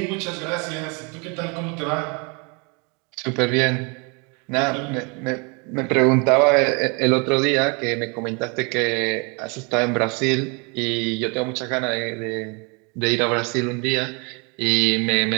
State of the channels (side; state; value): left; quieter; 32.2 dB